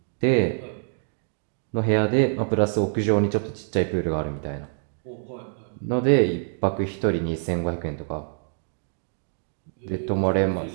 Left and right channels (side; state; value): left; silent; digital silence